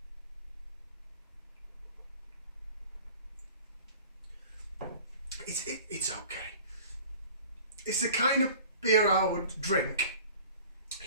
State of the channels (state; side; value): inverted; both; correlation -0.45